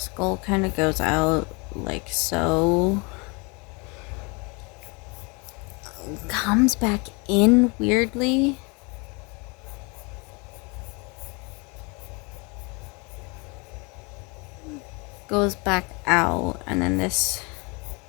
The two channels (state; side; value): quieter; right; 29.9 dB